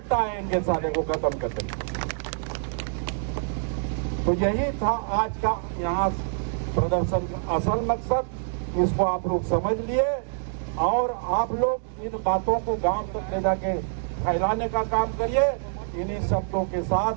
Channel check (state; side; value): silent; left; digital silence